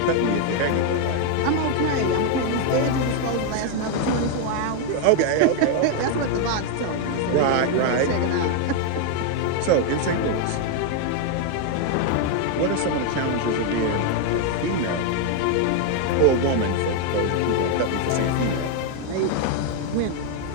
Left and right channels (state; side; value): different; both; correlation 0.01